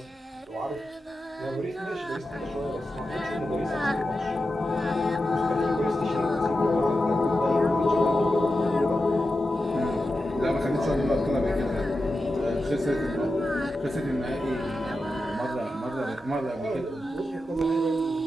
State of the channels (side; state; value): both; normal; correlation 0.91